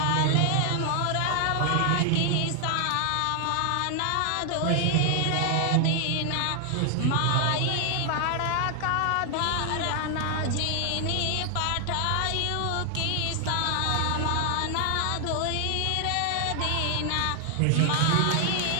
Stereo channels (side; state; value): both; different; correlation 0.00